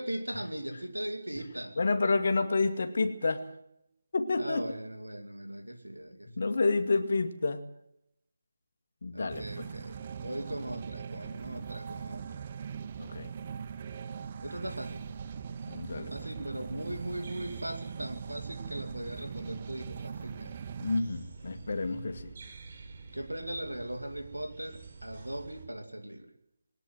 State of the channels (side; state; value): both; inverted; correlation -0.92